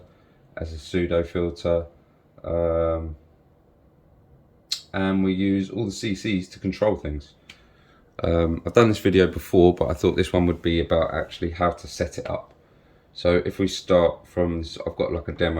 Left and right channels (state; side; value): identical; both; correlation 1.00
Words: as a pseudo filter, and we use all the CCs to control things. I've done this video before, but I thought this one would be about actually how to set it up. So if we start from this, I've got like a